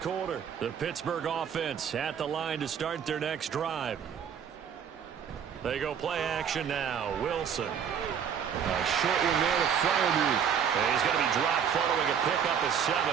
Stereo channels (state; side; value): quieter; left; 7.8 dB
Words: The Pittsburgh offense at the line to start their next drive. They go play action now. Wilson. A short one there to Freiermuth. He's going to be dropped following a pickup of 7